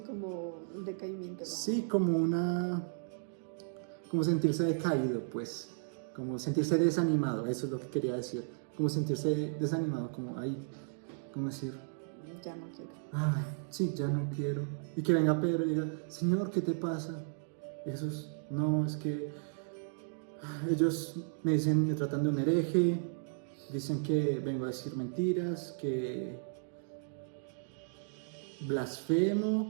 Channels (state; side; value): silent; left; digital silence